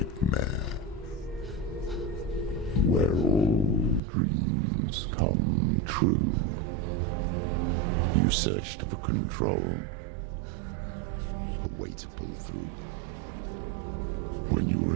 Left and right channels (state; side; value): drops out; left; at 4.0 s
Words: where all dreams come true. true. You searched for control, a way to pull through. When you were